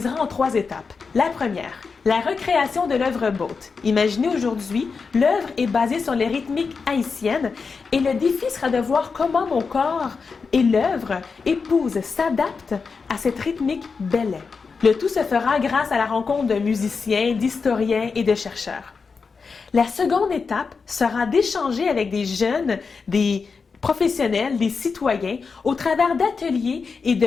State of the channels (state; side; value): quieter; right; 5.0 dB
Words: en 3 étapes. La première, la recréation de l'œuvre Boat. Imaginez aujourd'hui, l'œuvre est basée sur les rythmiques haïtiennes et le défi sera de voir comment mon corps et l'œuvre épousent, s'adaptent à cette rythmique belay. Le tout se fera grâce à la rencontre de musiciens, d'historiens et de chercheurs. La seconde étape sera d'échanger avec des jeunes, des professionnels, des citoyens au travers d'ateliers et